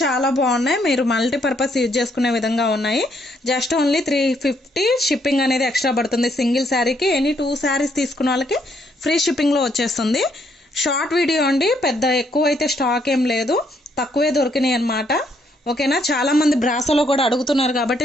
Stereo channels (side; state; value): both; normal; correlation 0.72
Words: చాలా బాగున్నాయి. మీరు మల్టీపర్పస్ యూజ్ చేసుకునే విధంగా ఉన్నాయి. జస్ట్ ఓన్లీ 350 షిప్పింగ్ అనేది ఎక్స్ట్రా పడుతుంది సింగిల్ శారీకి. ఎనీ 2 శారీస్ తీసుకున్న వాళ్ళకి ఫ్రీ షిప్పింగ్లో వచ్చేస్తుంది. షార్ట్ వీడియో అండి, పెద్ద ఎక్కువ అయితే స్టాక్ ఏం లేదు, తక్కువే దొరికినాయి అనమాట, ఓకేనా. చాలామంది బ్రాసోలో కూడా అడుగుతున్నారు కాబట్టి